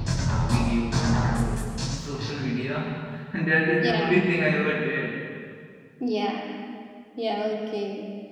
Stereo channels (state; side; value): identical; both; correlation 1.00